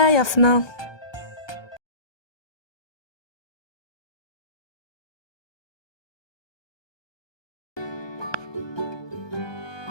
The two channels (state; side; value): late; right; 1.2 ms